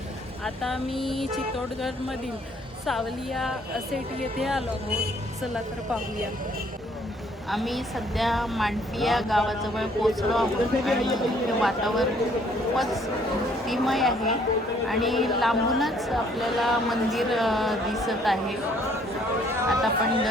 आता मी चित्तोडगडमधील सावलिया सेट येथे आलो आहोत। चला तर पाहूया। आम्ही सध्या मांडपिया गावाजवळ पोहोचलो आहोत आणि इथे वातावरण खूपच भक्तिमय आहे आणि लांबूनच आपल्याला मंदिर दिसत आहे। आता आपण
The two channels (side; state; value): both; normal; correlation 0.63